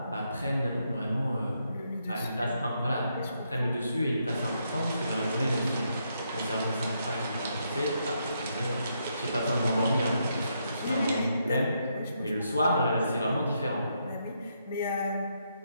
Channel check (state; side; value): inverted; both; correlation -0.78